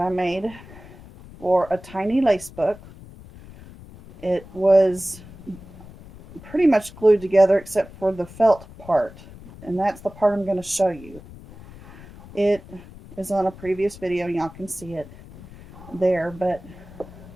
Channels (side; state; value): left; noise; rumble, 18 dB below the sound